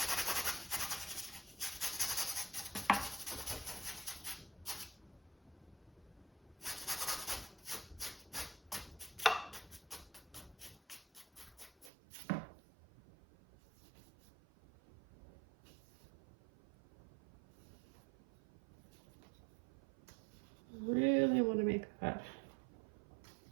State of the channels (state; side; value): drops out; left; at 11.9 s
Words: Really want to make that